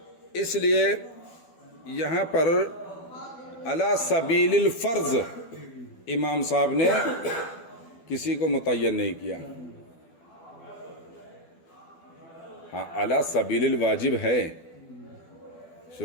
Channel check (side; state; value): right; late; 12 ms